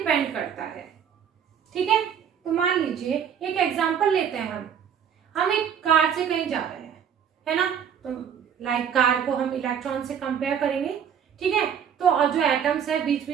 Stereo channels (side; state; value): left; quieter; 8.2 dB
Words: करता है। ठीक है, तो मान लीजिए एक एग्जांपल लेते हैं। हम एक कार से कहीं जा रहे हैं, है ना, तो लाइक कार को हम इलेक्ट्रॉन से कंपेयर करेंगे। ठीक है, तो और जो एटम्स है बीच